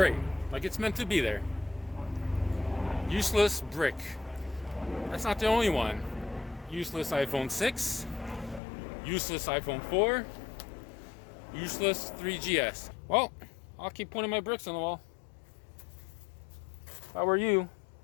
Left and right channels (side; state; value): right; drops out; at 8.6 s